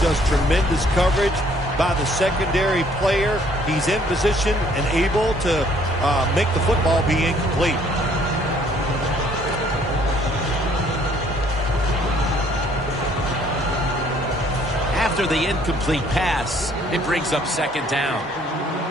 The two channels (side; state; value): both; normal; correlation 0.61